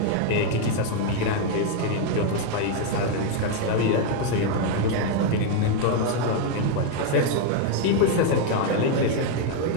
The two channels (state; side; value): different; both; correlation 0.01